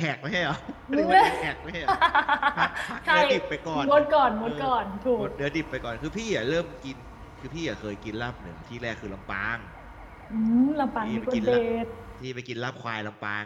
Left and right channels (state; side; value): identical; both; correlation 1.00